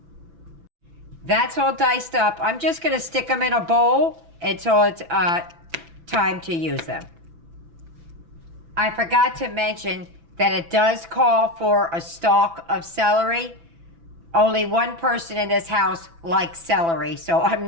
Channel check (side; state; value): left; late; 6.0 ms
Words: That's all diced up. I'm just going to stick them in a bowl until it's time to use them. I forgot to mention that it does call for a stalk of celery. Only one person in this house likes celery, so I'm